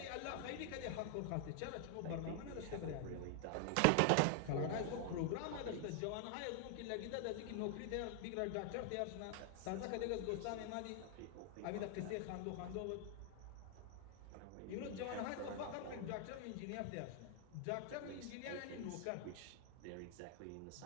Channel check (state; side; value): different; both; correlation 0.00